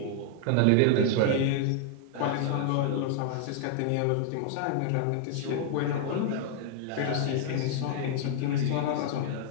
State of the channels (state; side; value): different; both; correlation 0.00